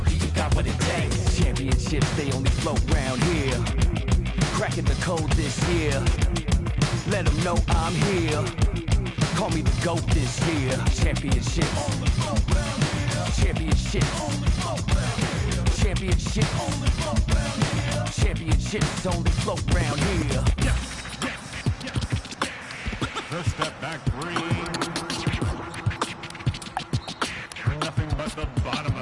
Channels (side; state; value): both; identical; correlation 1.00